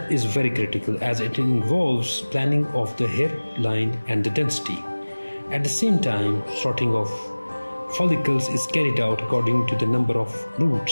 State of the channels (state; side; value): inverted; both; correlation -1.00